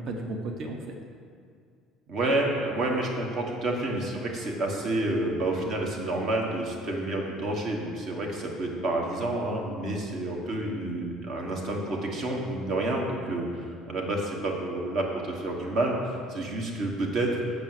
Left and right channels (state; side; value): normal; both; correlation 0.56